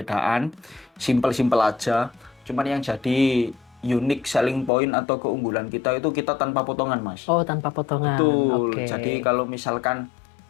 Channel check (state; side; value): drops out; right; at 4.7 s